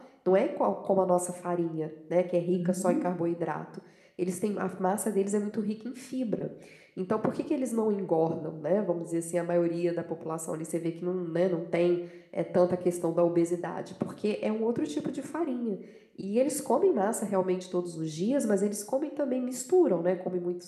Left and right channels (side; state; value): both; identical; correlation 1.00